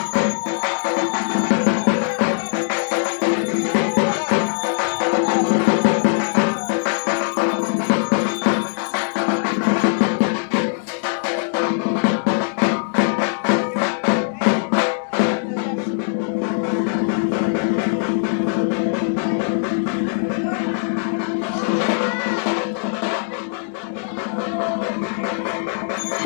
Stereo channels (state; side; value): silent; right; 62 dB below the other